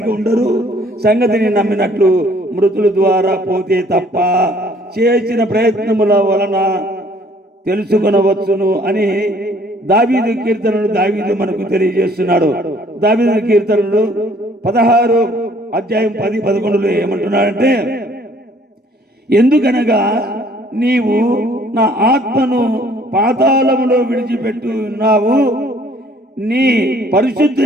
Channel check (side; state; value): both; normal; correlation 0.59